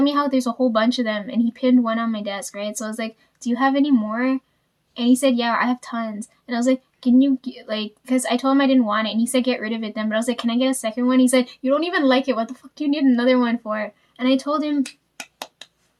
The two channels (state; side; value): identical; both; correlation 1.00